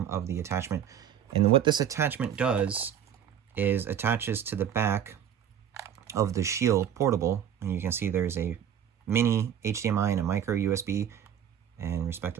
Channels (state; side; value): quieter; left; 9.3 dB